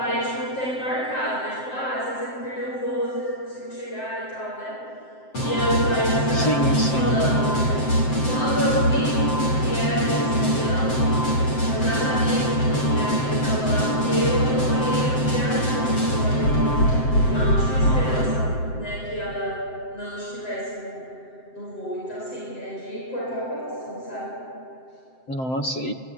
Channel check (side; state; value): right; late; 7.7 ms